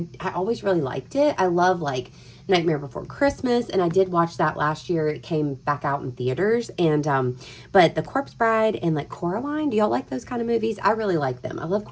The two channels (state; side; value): identical; both; correlation 1.00